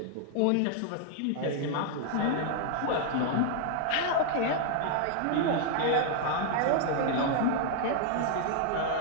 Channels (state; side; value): different; both; correlation 0.00